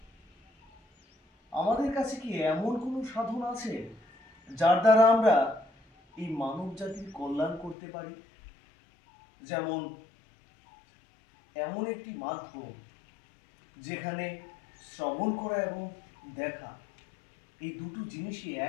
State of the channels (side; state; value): right; drops out; at 7.8 s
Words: আমাদের কাছে কি এমন কোনো সাধন আছে যার দ্বারা আমরা এই মানব জাতির কল্যাণ করতে পারি? যেমন এমন একটি মাধ্যম যেখানে শ্রবণ করা এবং দেখা, এই দুটো জিনিসই